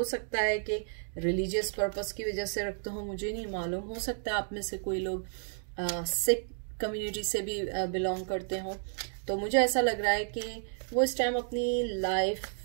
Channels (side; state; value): left; silent; digital silence